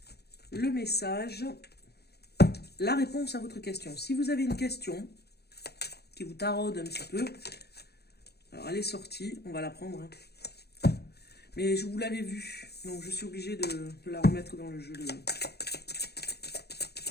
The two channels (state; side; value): late; right; 0.47 ms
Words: le message, la réponse à votre question. Si vous avez une question qui vous taraude un petit peu, alors elle est sortie, on va la prendre. Hein. Mais je vous l'avais vue, donc je suis obligée de la remettre dans le jeu.